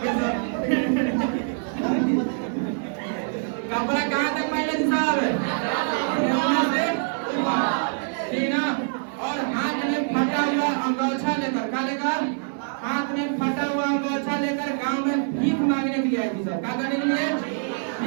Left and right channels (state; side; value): silent; left; digital silence